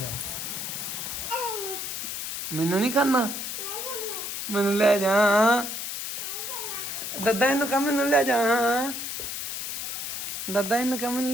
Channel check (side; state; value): left; noise; hiss, 4 dB below the sound